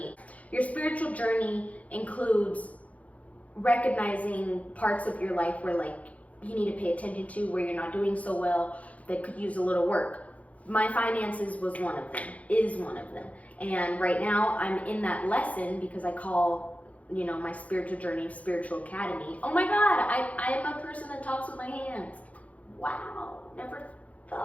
your spiritual journey includes recognizing parts of your life where like you need to pay attention to, where you're not doing so well, that could use a little work. My finances was one of them, is one of them. And right now I'm in that lesson because I call, my spiritual journey, Spiritual Academy. Oh my God, I am a person that talks with my hands. Wow, never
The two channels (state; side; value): late; right; 0.068 ms